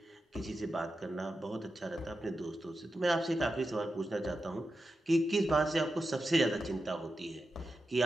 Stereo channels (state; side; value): normal; both; correlation 0.90